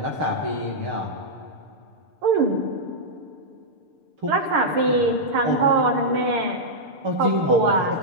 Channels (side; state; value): left; late; 6.8 ms